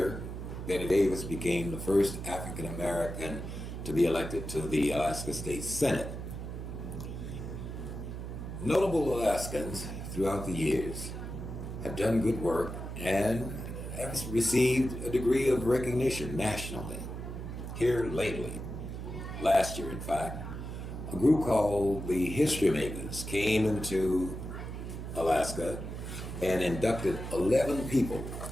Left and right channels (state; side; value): noise; right; hum, 7 dB below the sound